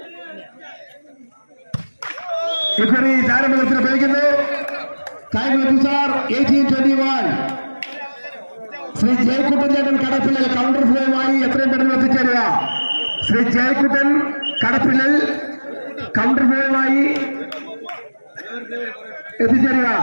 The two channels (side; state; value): both; inverted; correlation -1.00